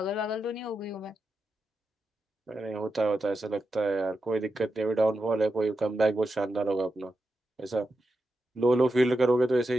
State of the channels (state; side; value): normal; both; correlation 0.88